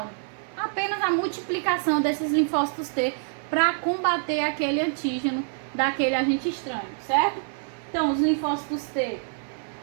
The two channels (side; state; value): left; silent; 55 dB below the other